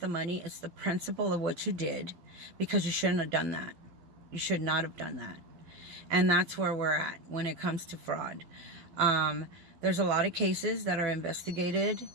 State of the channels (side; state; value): left; late; 12 ms